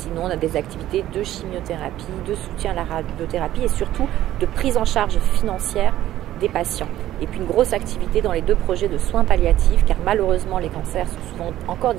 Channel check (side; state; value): left; quieter; 13.5 dB